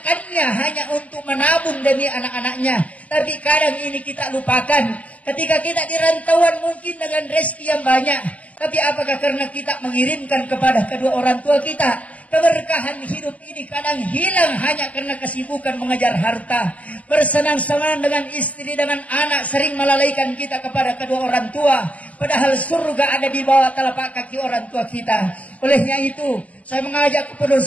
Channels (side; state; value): right; late; 0.072 ms